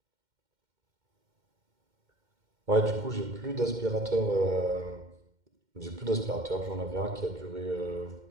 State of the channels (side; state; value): left; late; 2.1 ms